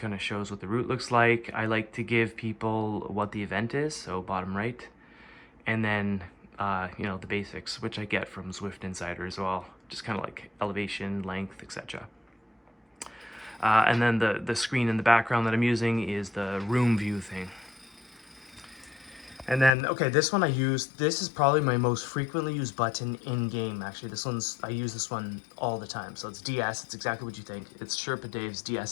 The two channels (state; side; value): drops out; right; at 19.7 s